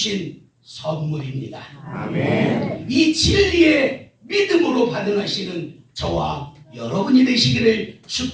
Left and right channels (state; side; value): identical; both; correlation 1.00